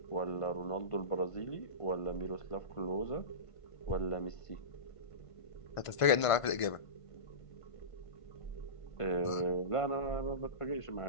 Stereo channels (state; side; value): late; right; 1.5 ms